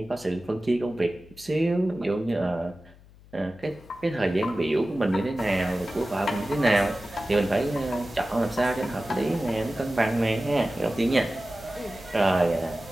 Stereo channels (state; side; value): noise; left; hum, 24 dB below the sound